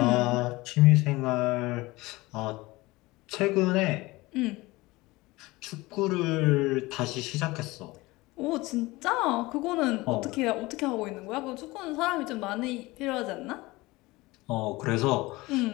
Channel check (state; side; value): quieter; right; 21.0 dB